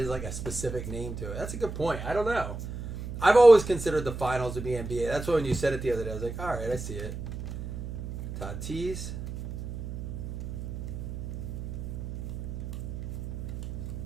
like a specific name to it. That's a good point. I don't know. I've always considered the finals to be NBA. That's why when you said it the other day, I was like, all right, I see it. Tatis.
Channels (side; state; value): right; noise; hum, 7 dB below the sound